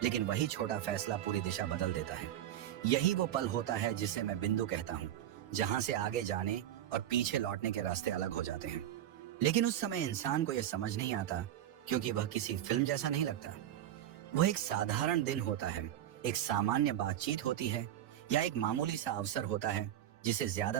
लेकिन वही छोटा फैसला पूरी दिशा बदल देता है। यही वो पल होता है जिसे मैं बिंदु कहता हूँ, जहाँ से आगे जाने और पीछे लौटने के रास्ते अलग हो जाते हैं। लेकिन उस समय इंसान को यह समझ नहीं आता, क्योंकि वह किसी फिल्म जैसा नहीं लगता। वह एक साधारण दिन होता है, एक सामान्य बातचीत होती है, या एक मामूली सा अवसर होता है जिसे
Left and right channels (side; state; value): left; quieter; 11.6 dB